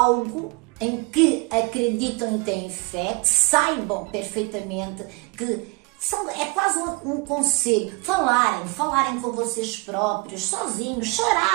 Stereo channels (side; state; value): left; quieter; 26.9 dB